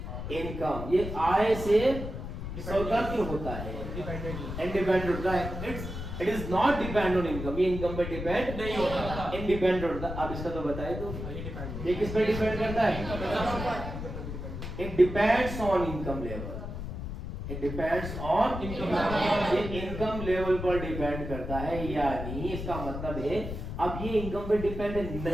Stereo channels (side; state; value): left; noise; rumble, 7 dB below the sound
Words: इनकम, ये आय से स्वतंत्र होता है, इंडिपेंडेंट होता है। It is not depend on income, ये इनकम पे डिपेंड नहीं होता, इंडिपेंडेंट होता है। अब इसका तो बताए तो ये किस पे डिपेंड करता है? It depends on income level, it depends on income, ये इनकम लेवल पर डिपेंड करता है। यानी इसका मतलब है अब ये इनकम पे डिपेंड